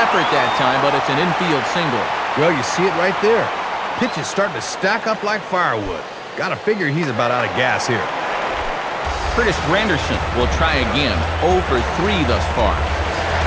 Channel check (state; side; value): identical; both; correlation 1.00